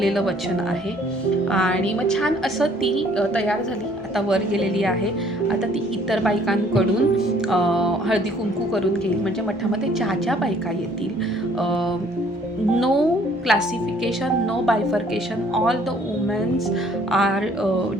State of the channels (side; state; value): both; normal; correlation 0.60